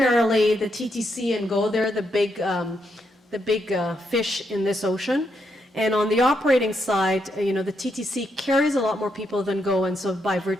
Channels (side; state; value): both; normal; correlation 0.79